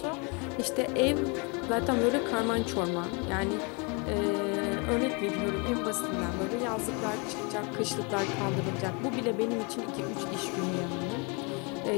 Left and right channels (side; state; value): right; quieter; 32.2 dB